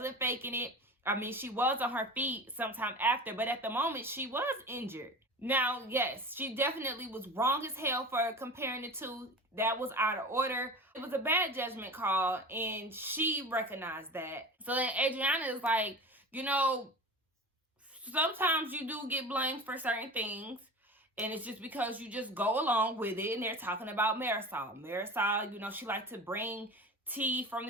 faking it. I mean, she was on her feet sometime after, but at the moment, she was injured. Now, yes, she definitely was wrong as hell for comparing the two. That was out of order. It was a bad judgment call, and she recognized that. So then Adriana is like, sometimes you do get blamed for certain things, and it's just because you just go along with it. And they're talking about Marisol. Marisol, she likes to bring tea from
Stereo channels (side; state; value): both; normal; correlation 0.33